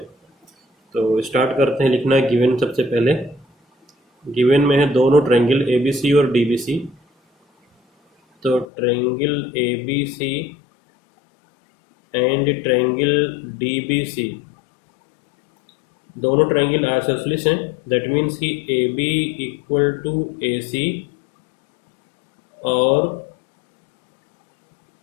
तो स्टार्ट करते हैं लिखना गिवन। सबसे पहले गिवन में है दोनों ट्रायंगल ABC और DBC। तो triangle ABC and triangle DBC दोनों ट्रायंगल आइसोसेलेस हैं। दैट मीन्स कि AB इक्वल टू AC और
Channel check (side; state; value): right; drops out; at 8.7 s